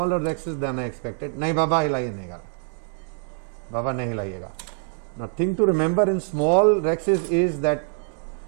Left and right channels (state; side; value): silent; left; digital silence